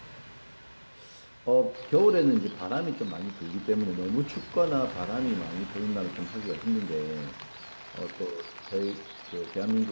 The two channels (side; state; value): both; inverted; correlation -1.00